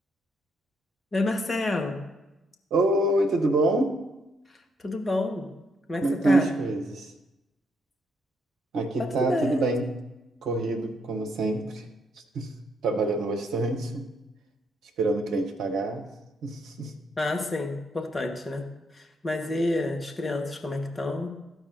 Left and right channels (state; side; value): normal; both; correlation 0.74